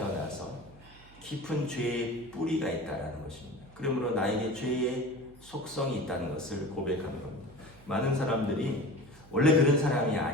깊은 죄의 뿌리가 있다는 것입니다. 그러므로 나에게 죄의 속성이 있다는 것을 고백하는 겁니다. 많은 사람들이 원래 그런 사람이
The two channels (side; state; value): right; noise; hum, 23 dB below the sound